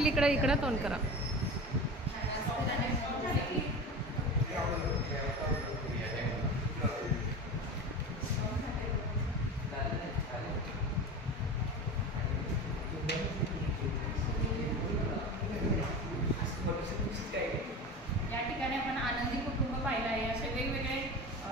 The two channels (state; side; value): normal; both; correlation 0.30